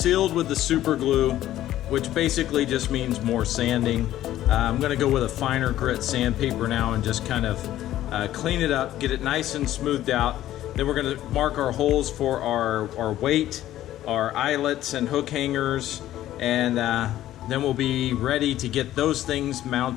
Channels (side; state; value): right; quieter; 13.4 dB